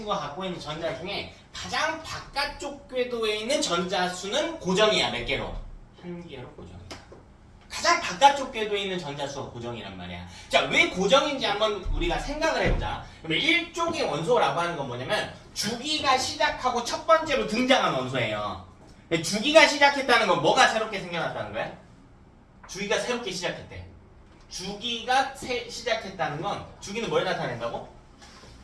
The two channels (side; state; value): both; identical; correlation 1.00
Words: 갖고 있는 전자 중에 가장 바깥쪽 궤도에 있는 전자 수는 고정이야. 몇 개로? 한 개로 고정이야. 가장 바깥쪽 궤도에 있는 전자 수가 고정이란 말이야. 자, 왜 고정인지 한번 우리가 생각을 해보자. 그러면 1쪽의 원소라고 하는 건 뭐냐면 주기가 시작하고 첫 번째로 등장한 원소예요. 주기가 시작했다는 건 뭐가 새롭게 생겨났다는 거야? 주기가 새롭게 시작했대. 주기가 시작했다는 건 주기는 뭘 나타낸다고?